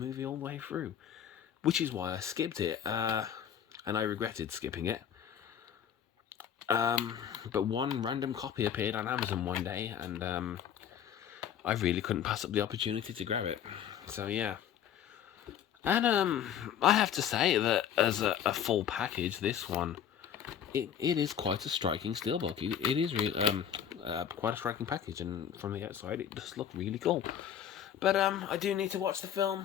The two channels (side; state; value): right; quieter; 9.1 dB